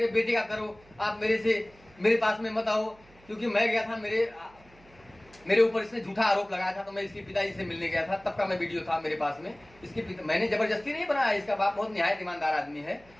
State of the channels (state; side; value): noise; right; hum, 27 dB below the sound